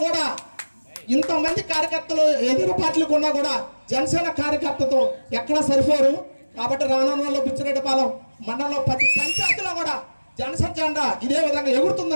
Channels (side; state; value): both; inverted; correlation -1.00